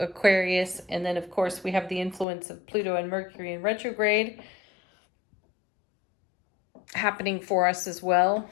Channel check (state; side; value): drops out; right; at 2.2 s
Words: And then, of course, we have the influence of Pluto and Mercury in retrograde happening for us as well.